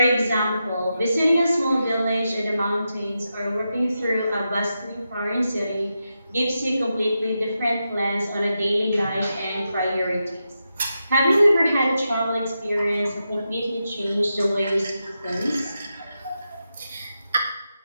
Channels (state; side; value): inverted; both; correlation -0.88